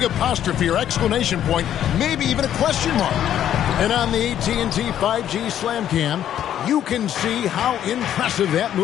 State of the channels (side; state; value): right; quieter; 10.6 dB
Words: apostrophe or exclamation point, maybe even a question mark. And on the AT&T 5G Slam Cam, you can see how impressive that